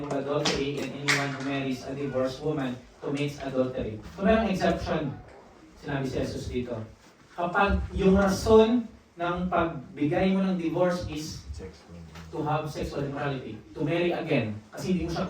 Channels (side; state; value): both; identical; correlation 1.00